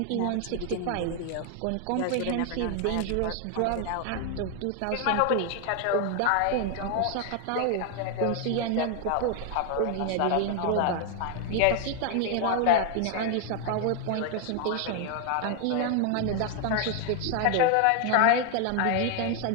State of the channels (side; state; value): both; different; correlation 0.00